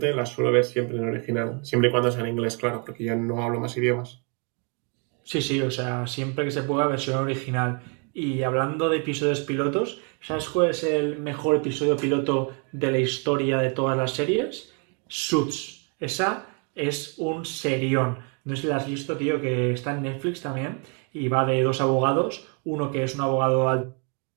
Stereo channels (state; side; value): quieter; left; 36.5 dB